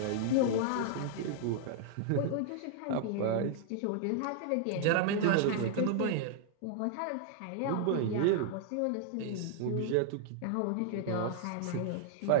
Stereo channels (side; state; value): both; different; correlation -0.01